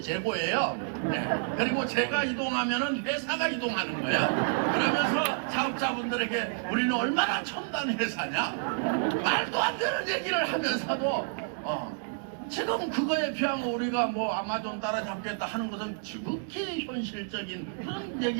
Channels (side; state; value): left; silent; digital silence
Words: 재고예요. 네. 그리고 제가 이동하면은 회사가 이동하는 거예요. 그러면서 사업자분들에게 우리는 얼마나 첨단 회사냐, 말도 안 되는 얘기를 하면서도 지금 그거에 비하면 우리가 뭐 아마존 따라잡겠다 하는 것은 지극히 현실적인 그런